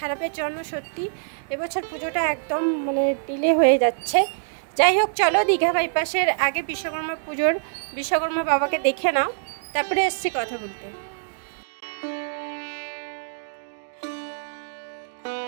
জন্য সত্যি এবছর পুজোটা একদম মানে ডিলে হয়ে যাচ্ছে। যাই হোক, চলো দীঘা বাইপাসের আগে বিশ্বকর্মা বাবাকে দেখে নাও, তারপরে এসছি কথা বলতে।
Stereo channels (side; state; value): left; silent; digital silence